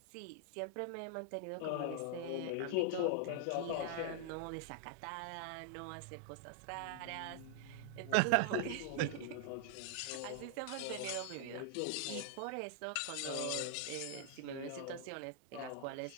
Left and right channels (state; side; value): different; both; correlation -0.01